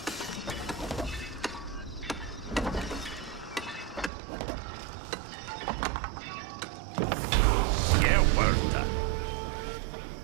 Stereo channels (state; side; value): drops out; left; at 4.1 s